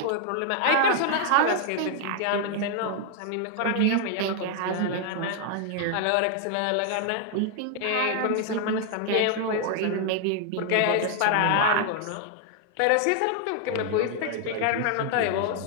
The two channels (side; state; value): both; different; correlation 0.00